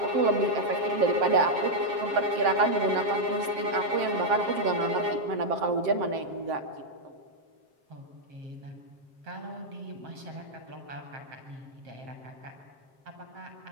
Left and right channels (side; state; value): left; late; 7.6 ms